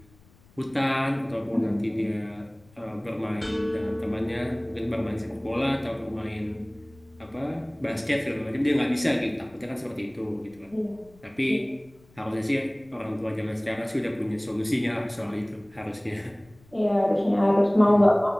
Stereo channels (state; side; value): noise; left; rumble, 28 dB below the sound